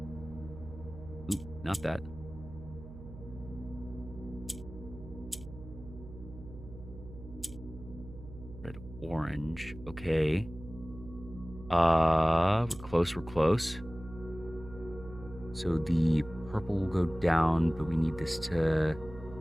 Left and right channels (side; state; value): right; noise; hum, 14 dB below the sound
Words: Oop, not that. Red, orange. Okay. We're close. So the purple will go down, but we need this to